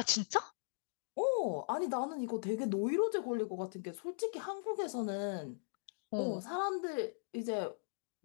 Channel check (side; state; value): right; silent; digital silence